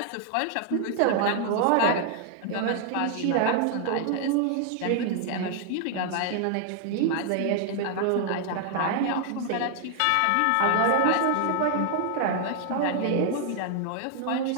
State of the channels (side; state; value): both; different; correlation 0.00